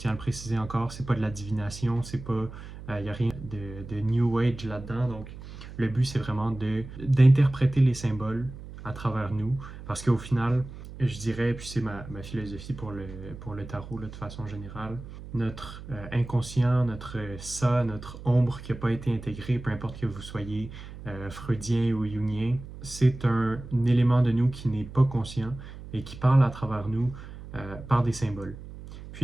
à le préciser encore, c'est pas de la divination, c'est pas, il n'y a rien de New Age là-dedans. Donc, le but, c'est vraiment d'interpréter les symboles à travers nous, parce qu'au final, je dirais, puis c'est ma philosophie pour le tarot là, de façon générale, notre inconscient, notre ça, notre ombre qui n'a pas été intégrée, peu importe que vous soyez freudien ou jungien, c'est un élément de nous qui n'est pas conscient et qui parle à travers nous par des symboles.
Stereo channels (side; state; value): right; noise; hum, 13 dB below the sound